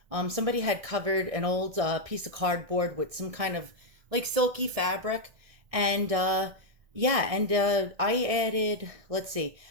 Somebody had covered an old piece of cardboard with some kind of like silky fabric, and yeah, and I added, let's see,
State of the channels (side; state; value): left; late; 1.6 ms